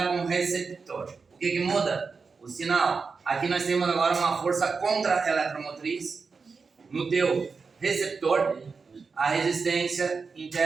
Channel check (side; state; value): left; quieter; 4.9 dB